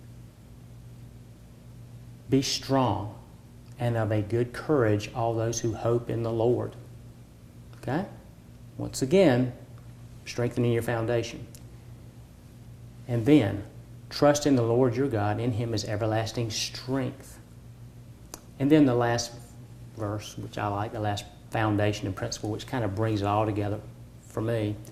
be strong and of a good courage, all those who hope in the Lord. Okay? Once again, strengthening your foundation. And then, trust in the Lord your God. In Him is everlasting strength. And then the last verse, which I like, the last foundation and principle, which kind of brings it all together for me.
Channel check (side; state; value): both; identical; correlation 1.00